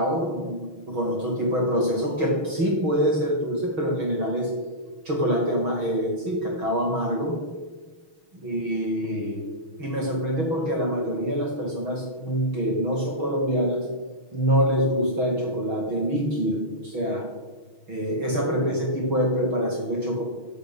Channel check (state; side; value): late; left; 6.3 ms